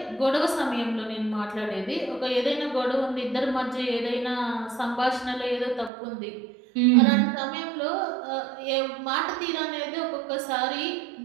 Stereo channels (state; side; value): drops out; left; at 5.9 s